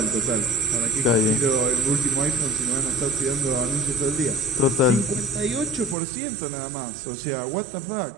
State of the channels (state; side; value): drops out; left; at 6.0 s